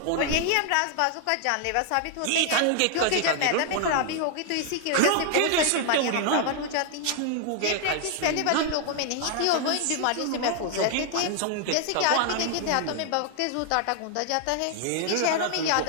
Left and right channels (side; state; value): both; different; correlation 0.00